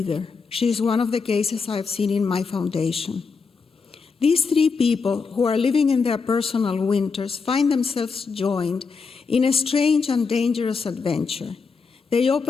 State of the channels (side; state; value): right; quieter; 5.0 dB